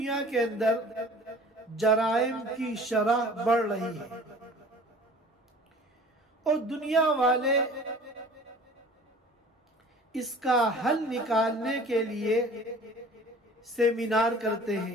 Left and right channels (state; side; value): normal; both; correlation 0.45